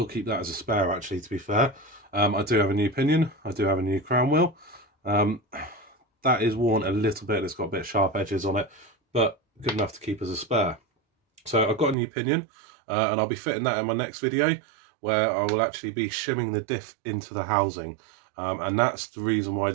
keep that as a spare actually, to be fair. I do have a new pinion, I do have a new crown wheel. That is worn a little bit, it's got a bit of sharp edges on it, but good enough to keep as a spare. So I've got a new pinion and I'll be fitting that in my next video where I will actually be shimming the diff into the housing. And that's the reason why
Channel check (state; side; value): drops out; left; at 12.0 s